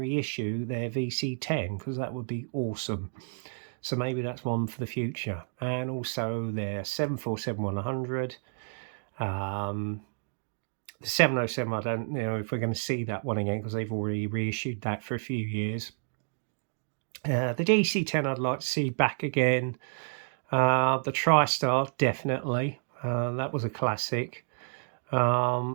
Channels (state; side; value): silent; left; digital silence